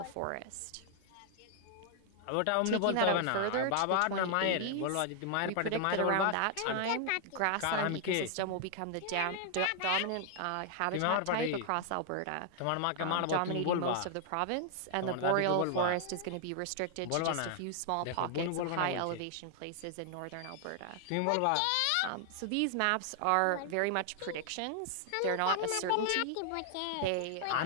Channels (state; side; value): different; both; correlation 0.00